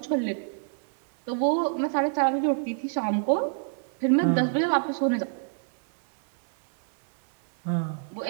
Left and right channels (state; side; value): silent; left; 60 dB below the other